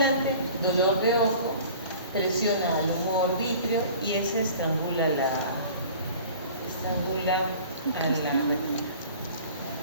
dolor de ojo, presiona al humor vítreo y ese estrangula a la retina.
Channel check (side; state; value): both; inverted; correlation -0.44